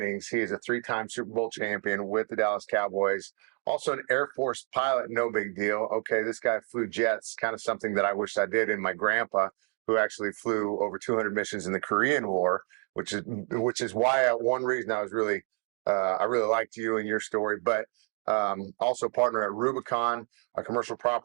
He is a 3-time Super Bowl champion with the Dallas Cowboys. Also an Air Force pilot, no big deal. Okay, this guy flew jets, kind of something that I wish I did. And my grandpa, who actually flew over 200 missions in the Korean War, which is why one reason I was really I really liked you and your story, but also partner at Rubicon, a commercial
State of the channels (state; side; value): quieter; left; 37.2 dB